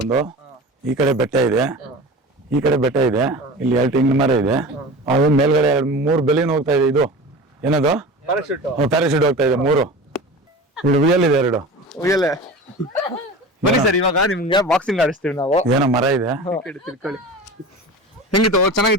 ಈ ಕಡೆ ಬೆಟ್ಟ ಇದೆ, ಈ ಕಡೆ ಬೆಟ್ಟ ಇದೆ, ಇಲ್ಲಿ 2 ತೆಂಗಿನ ಮರ ಇದೆ. ಅದು ಮೇಲ್ಗಡೆ 3 ಬೆಲಿನ ಹೋಗ್ತಾ ಇದೆ. ಇದು ಏನದು? ಪ್ಯಾರಾಶೂಟ್ ಹೋಗ್ತಾ ಇದೆ 3. ಇಲ್ಲಿ ಉಯ್ಯಲ್ ಇದೆ 2. ಉಯ್ಯಲೆ. ಬನ್ನಿ ಸರ್, ಇವಾಗ ನಿಮ್ಗೆ ಬಾಕ್ಸಿಂಗ್ ಆಡಿಸ್ತೀವಿ ನಾವು. ಏನೋ ಮರ ಇದೆ. ತಿಳ್ಕೊಳ್ಳಿ. ಹೆಂಗಿತ್ತು?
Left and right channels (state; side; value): normal; both; correlation 0.34